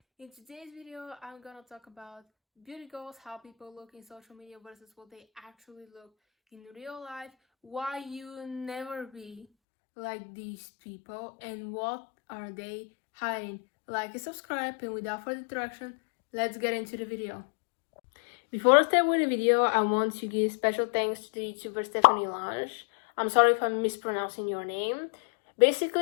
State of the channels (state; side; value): drops out; right; at 9.5 s